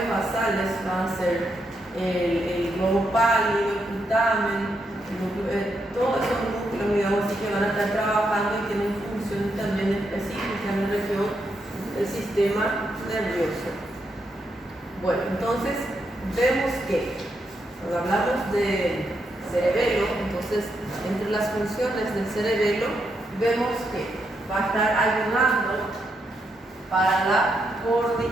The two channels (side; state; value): both; normal; correlation 0.81